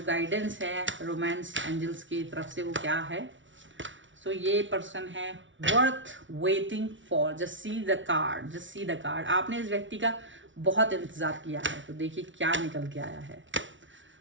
गाइडेंस है रोमांस एंजल्स की तरफ से वो क्या है। सो ये पर्सन है worth waiting for, just see the card, just see the card. आपने इस व्यक्ति का बहुत इंतजार किया है, तो देखिए क्या निकल के आया है।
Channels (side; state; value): left; late; 0.56 ms